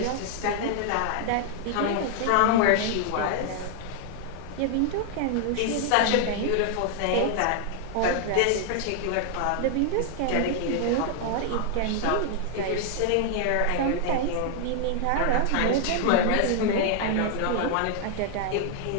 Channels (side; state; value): both; different; correlation 0.00